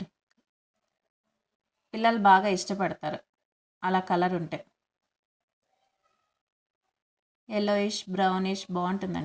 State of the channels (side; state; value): both; identical; correlation 1.00